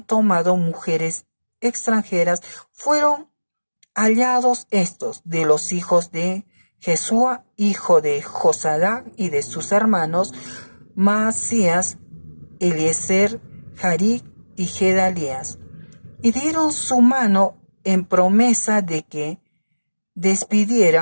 tomado mujeres extranjeras. Fueron hallados estos de los hijos de Jesúa, hijo de Josadac, y de sus hermanos Maasías, Eliezer, Jaric y Gedalías, y dieron su mano en promesa de que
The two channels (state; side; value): inverted; both; correlation -1.00